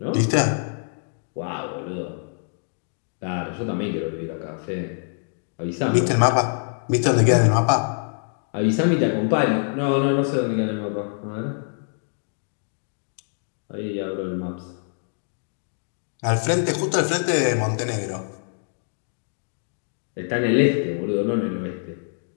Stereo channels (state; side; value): silent; right; digital silence